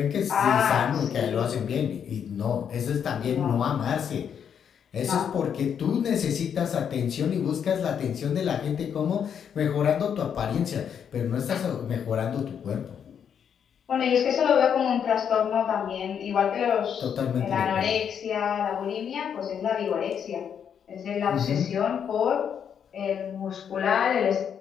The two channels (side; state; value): right; quieter; 8.0 dB